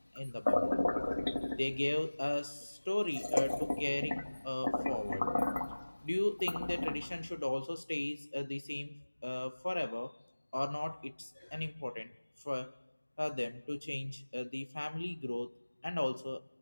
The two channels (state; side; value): inverted; both; correlation -1.00